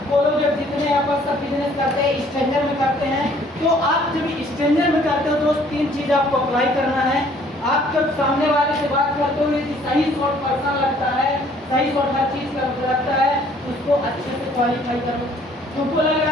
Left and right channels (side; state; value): both; normal; correlation 0.59